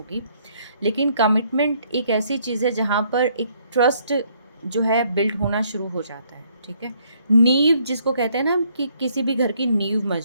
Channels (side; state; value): both; inverted; correlation -0.67